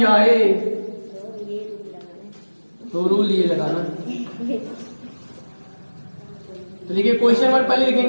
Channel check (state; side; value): inverted; both; correlation -1.00